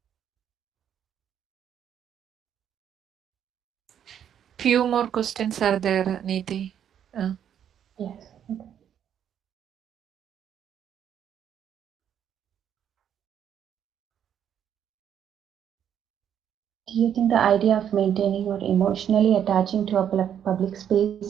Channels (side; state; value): left; quieter; 9.2 dB